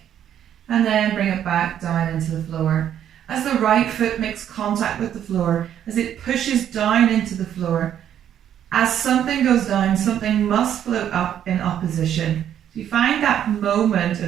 And then bring it back down into the floor. As the right foot makes contact with the floor, as it pushes down into the floor, as something goes down, something must float up in opposition. So you find that moment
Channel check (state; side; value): quieter; left; 10.0 dB